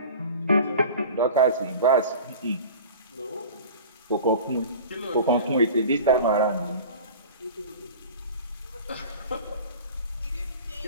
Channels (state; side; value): inverted; both; correlation -0.38